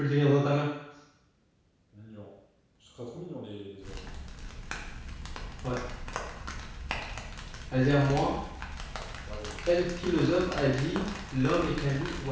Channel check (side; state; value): both; identical; correlation 1.00